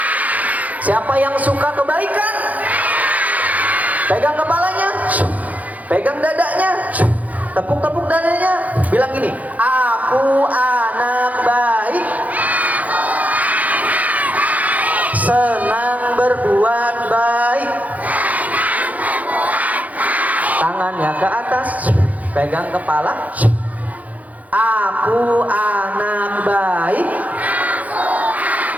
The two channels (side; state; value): left; late; 0.075 ms